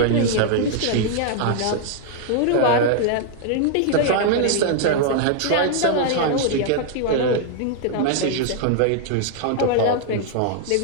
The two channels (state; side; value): different; both; correlation -0.01